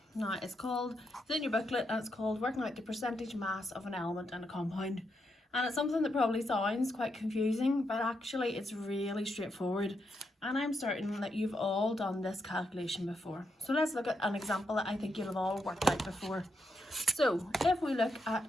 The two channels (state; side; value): normal; both; correlation 0.82